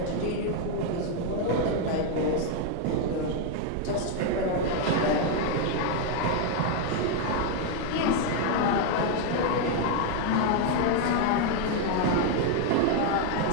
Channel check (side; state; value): both; different; correlation 0.01